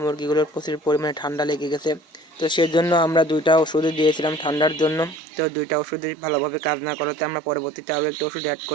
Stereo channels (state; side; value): drops out; left; at 5.2 s